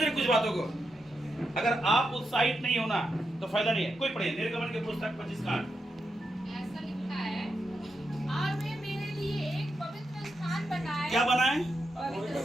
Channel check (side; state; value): both; normal; correlation 0.86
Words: रहे कुछ बातों को? अगर आप उत्साहित नहीं होना तो फायदा नहीं है। कोई पढ़े निर्गमन के पुस्तक 25 का 8। ऐसा लिखा है, और वे मेरे लिए एक पवित्र स्थान बनाए। क्या बनाए? पवित्र